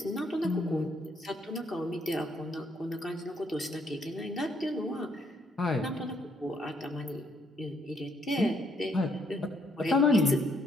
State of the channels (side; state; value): both; normal; correlation 0.70